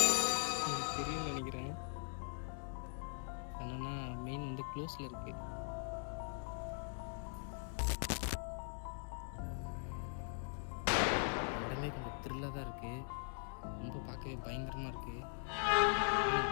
உங்களுக்கு தெரியும்னு நினைக்கிறேன். என்னன்னா மெயின் வந்து க்ளோஸில் இருக்குது. இடமே கொஞ்சம் த்ரில்லாக தான் இருக்குது. ரொம்ப பார்க்கவே பயங்கரமாக இருக்குது.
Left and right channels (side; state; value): right; silent; digital silence